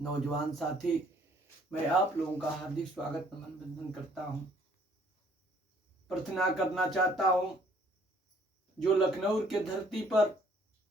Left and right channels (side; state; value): both; normal; correlation 0.61